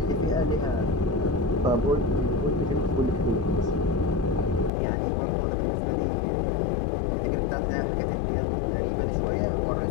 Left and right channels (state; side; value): drops out; right; at 4.7 s